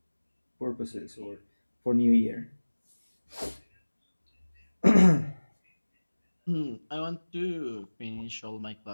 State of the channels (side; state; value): both; inverted; correlation -1.00